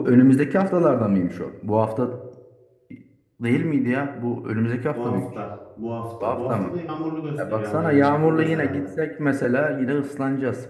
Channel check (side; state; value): both; identical; correlation 1.00